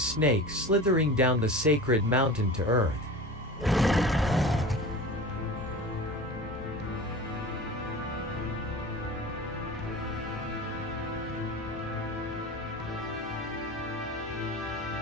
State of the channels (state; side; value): normal; both; correlation 0.34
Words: slithering down the sacred mountain to earth.